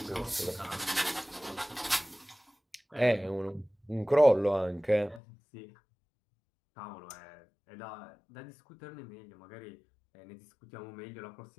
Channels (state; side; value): drops out; right; at 5.2 s